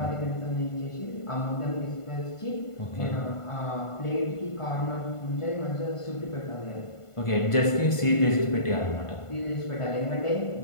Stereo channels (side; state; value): right; late; 1.5 ms